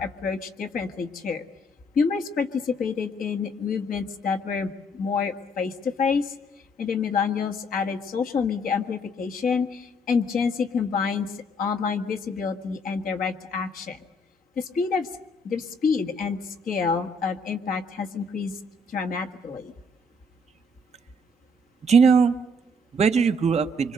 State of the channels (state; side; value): normal; both; correlation 0.66